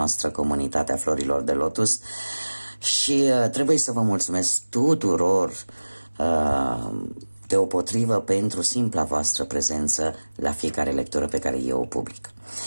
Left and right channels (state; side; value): inverted; both; correlation -1.00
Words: comunitate a florilor de lotus și trebuie să vă mulțumesc tuturor deopotrivă pentru simpla voastră prezență la fiecare lectură pe care eu o public.